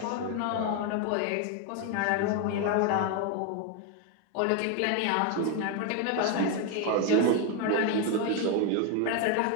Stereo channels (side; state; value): both; different; correlation 0.01